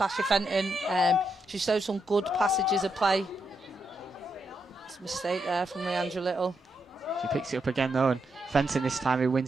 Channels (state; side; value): normal; both; correlation 0.82